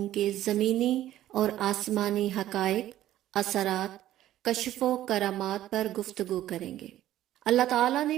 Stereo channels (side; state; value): left; quieter; 13.4 dB